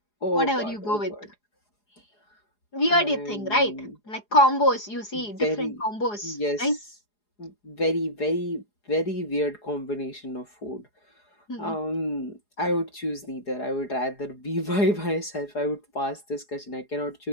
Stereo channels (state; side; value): late; right; 4.8 ms